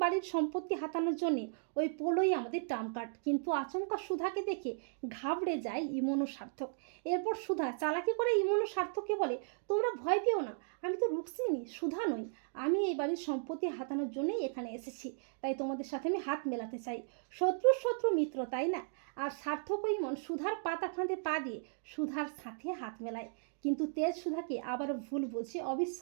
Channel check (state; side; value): silent; left; digital silence